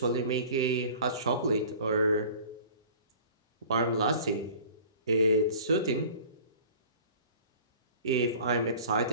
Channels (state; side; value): inverted; both; correlation -0.45